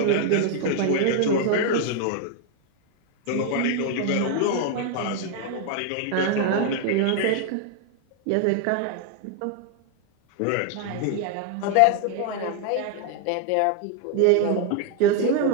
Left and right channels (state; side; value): different; both; correlation 0.00